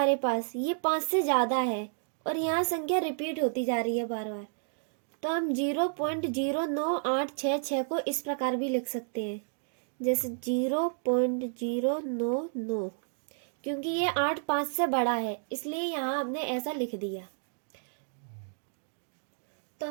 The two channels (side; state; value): left; silent; digital silence